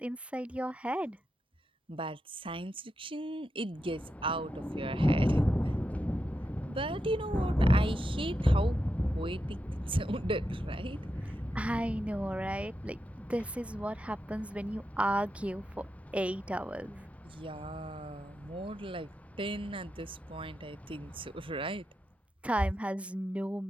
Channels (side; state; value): both; normal; correlation 0.87